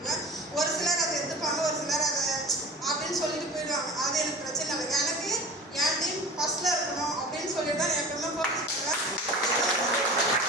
ஒரு சிலர் அதை எடுத்துப்பாங்க, ஒரு சிலர் அதை அப்படின்னு சொல்லிட்டு போயிடுவாங்க. அது எனக்கு பிரச்சனை இல்லை. எனக்கு என் டீம் ஃபர்ஸ்ட்ல இருக்கணும் அப்படின்னு சொல்லிட்டு தான் எப்பவுமே ஃபோக்கஸ் பண்ணுவேன்.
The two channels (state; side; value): normal; both; correlation 0.36